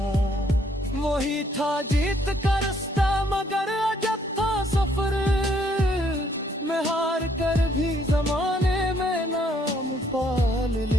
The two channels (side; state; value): both; normal; correlation 0.67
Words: वही था जीत का रास्ता मगर अजब था सफर, मैं हार कर भी जमाने में नाम पाल